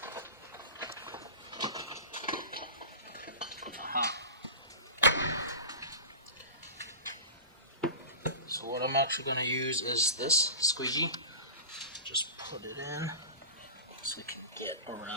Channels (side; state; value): both; inverted; correlation -0.31